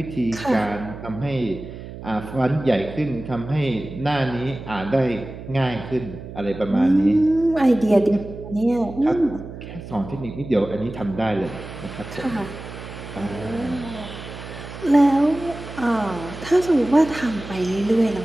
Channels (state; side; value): noise; right; hum, 12 dB below the sound